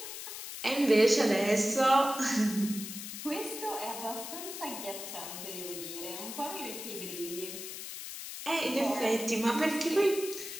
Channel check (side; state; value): left; noise; hiss, 9 dB below the sound